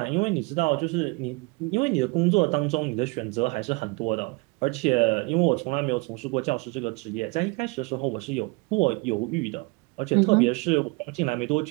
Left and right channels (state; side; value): quieter; left; 27.2 dB